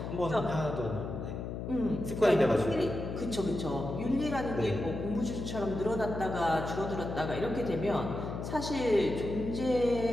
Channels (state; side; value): noise; left; hum, 6 dB below the sound